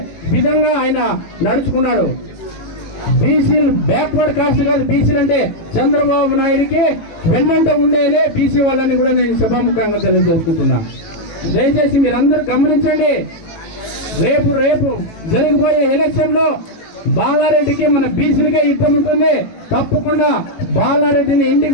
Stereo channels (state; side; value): late; right; 18 ms